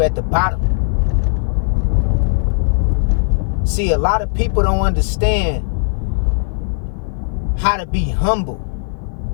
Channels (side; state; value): right; silent; 55 dB below the other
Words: at the bottom. See, a lot of people don't understand how to be humble